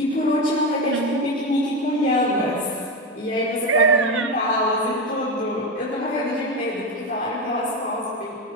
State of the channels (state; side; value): normal; both; correlation 0.15